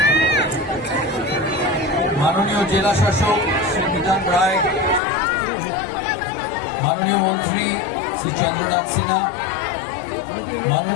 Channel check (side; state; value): right; drops out; at 5.0 s